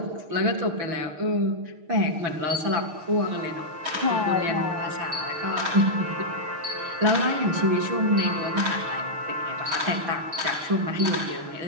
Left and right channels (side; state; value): left; late; 6.5 ms